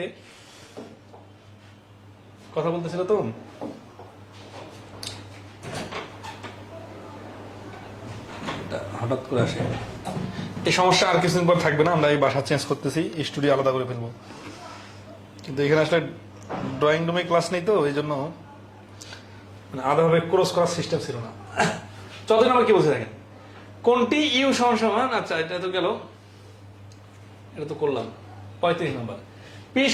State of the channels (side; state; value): both; identical; correlation 1.00